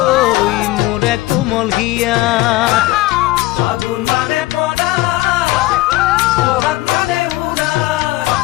মোরে কোমল হিয়া ফাগুন মানে পনা বহাগ মানে উলা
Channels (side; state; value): right; quieter; 18.3 dB